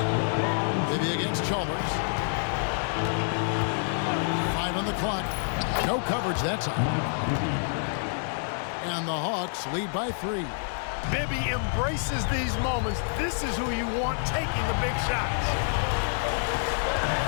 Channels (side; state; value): right; silent; digital silence